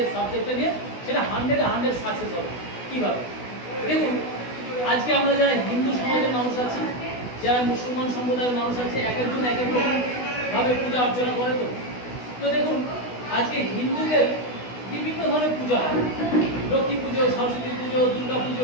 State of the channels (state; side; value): late; right; 16 ms